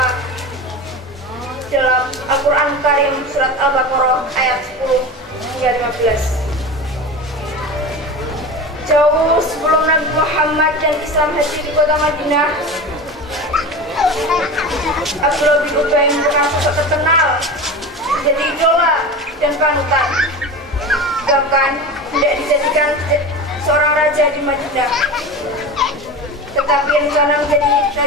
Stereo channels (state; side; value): normal; both; correlation 0.29